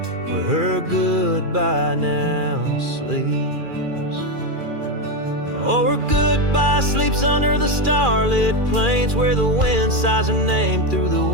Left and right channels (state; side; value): late; left; 2.4 ms